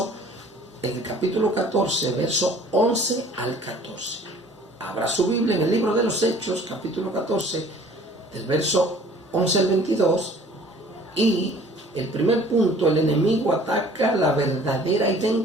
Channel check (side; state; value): both; normal; correlation 0.51